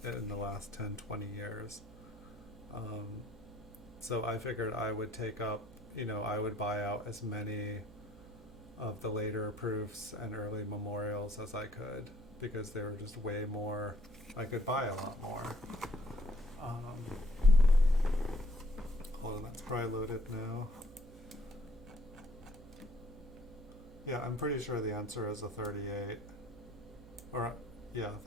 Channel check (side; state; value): right; noise; hum, 19 dB below the sound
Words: in the last 10, 20 years. So I figured I would take up, I would buy out as many of the later proofs and early memorials as I could, because they were just way more, I could buy a lot more. Hold on, that's probably loaded now. Yeah, I'm pretty sure the answer is a 38. Or, yeah,